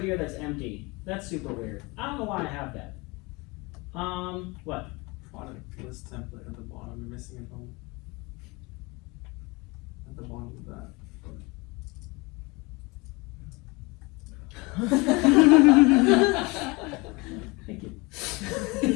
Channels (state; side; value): quieter; right; 25.4 dB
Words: that's empty. That's super weird. I don't know why I have that. What? Product list template at the bottom. You're missing a home. At the bottom of that. Thank you.